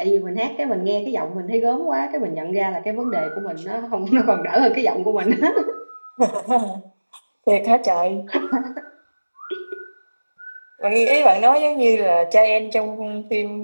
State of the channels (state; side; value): inverted; both; correlation -1.00